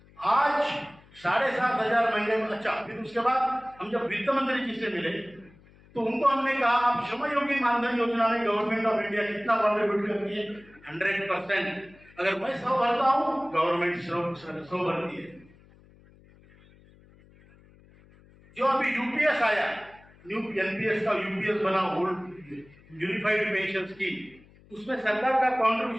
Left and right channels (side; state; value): left; noise; hum, 26 dB below the sound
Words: आज 7,500 महीने में, अच्छा फिर उसके बाद हम जब वित्त मंत्री जी से मिले तो उनको हमने कहा आप श्रमयोगी मानधन योजना में गवर्नमेंट ऑफ इंडिया कितना कॉन्ट्रीब्यूट करती है? 100%। अगर मैं 100 भरता हूं, गवर्नमेंट 100 भरती है। जो अभी यूपीएस आया, न्यू एनपीएस का यूपीएस बना, यूनिफाइड पेंशन स्कीम, उसमें सरकार का